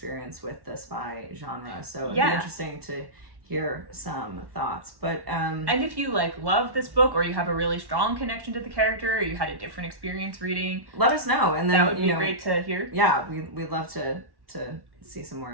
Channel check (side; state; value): left; late; 1.1 ms